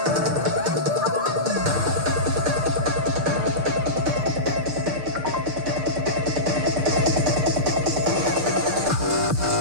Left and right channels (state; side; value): late; left; 6.7 ms